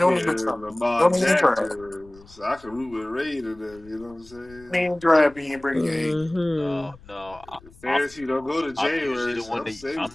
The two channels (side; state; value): left; noise; rumble, 23 dB below the sound